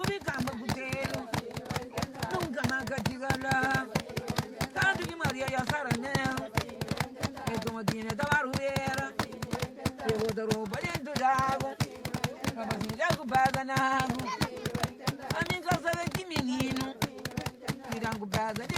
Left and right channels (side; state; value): both; identical; correlation 1.00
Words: campo puteiro, nunca mais chega lá, tanto que Maria e a saranela, e como tinha da barulheira, eu vou dar roupa dentro d'água, Robocinho já culpada na água, a minha casa é de menino, tiram culpada